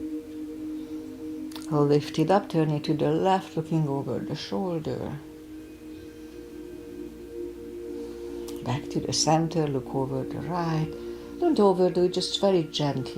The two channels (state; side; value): identical; both; correlation 1.00